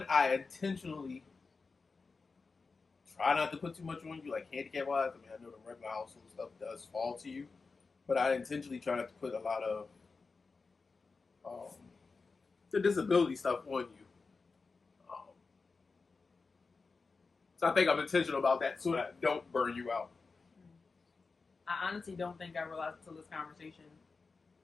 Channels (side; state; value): right; quieter; 4.4 dB